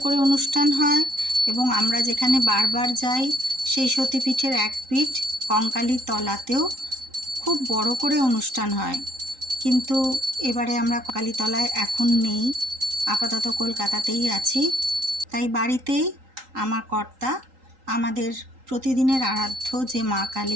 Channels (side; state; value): left; late; 3.8 ms